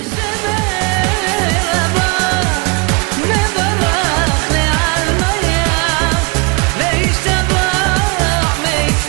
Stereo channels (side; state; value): left; quieter; 30.5 dB